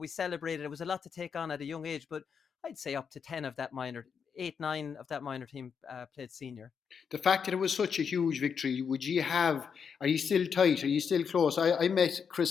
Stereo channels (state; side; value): quieter; right; 6.6 dB